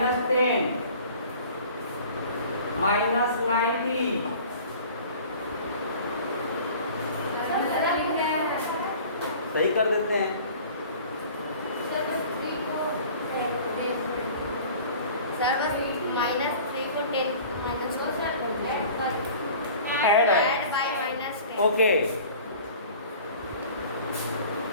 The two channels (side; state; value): both; inverted; correlation -0.45